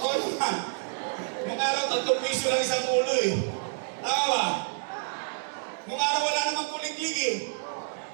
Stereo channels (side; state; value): left; silent; digital silence